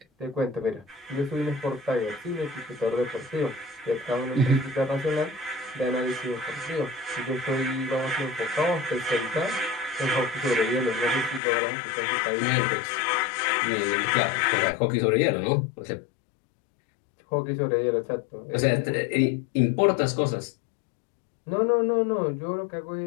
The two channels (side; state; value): right; drops out; at 11.4 s